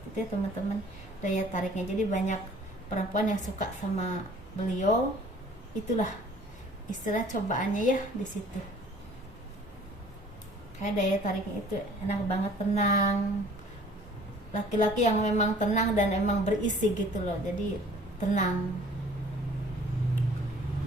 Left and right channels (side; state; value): both; normal; correlation 0.52